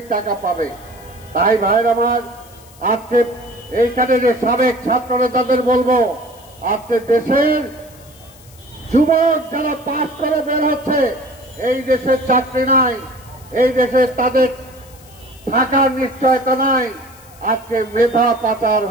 টাকা পাবে? তাই ভাইয়ের আমার, আজকে এইখানে যে সাবেক ছাত্র নেতাদের বলবো, আজকে দেশের যুবক যারা পাস করে বের হচ্ছে, এই দেশের চাকরি নাই, এই দেশে তাদের থাকার নিশ্চয়তা নাই, আজকে মেধা পাচার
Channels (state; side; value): noise; left; hiss, 24 dB below the sound